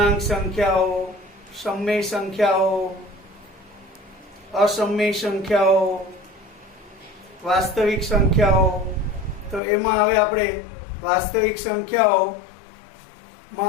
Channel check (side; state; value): right; drops out; at 9.6 s